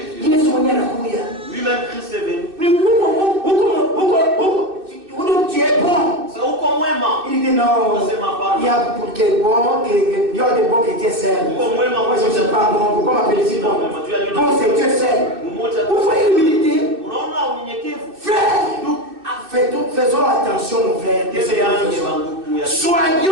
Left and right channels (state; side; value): late; left; 2.6 ms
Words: Dieu. Lui-même Christ est venu. Tu es bon. Il dit non. Il y a pour qui est bon, il y a des bons chrétiens seuls. Moi je ne suis pas bon. Pourquoi m'appelle-t-il bon? Bon, c'est Dieu seul. Vous voyez l'humilité? Frère, faisons attention, mon frère.